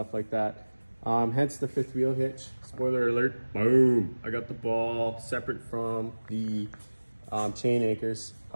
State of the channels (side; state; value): both; inverted; correlation -1.00